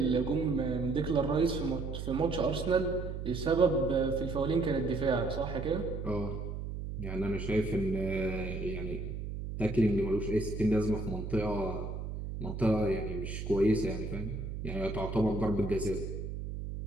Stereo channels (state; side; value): noise; right; hum, 6 dB below the sound